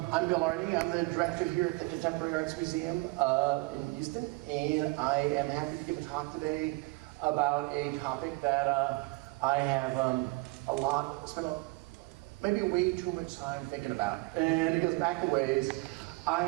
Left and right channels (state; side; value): quieter; left; 25.5 dB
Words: Bill Arning. I'm the director here at the Contemporary Arts Museum in Houston, and I am happy to give a talk today about a topic that I have spent maybe way too much time thinking about, and it goes back a ways.